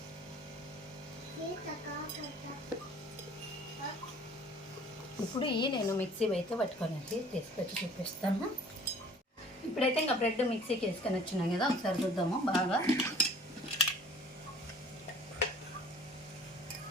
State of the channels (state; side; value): normal; both; correlation 0.51